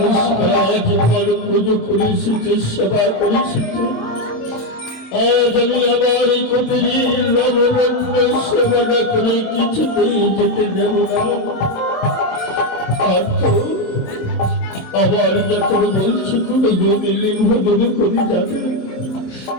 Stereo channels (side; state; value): right; late; 27 ms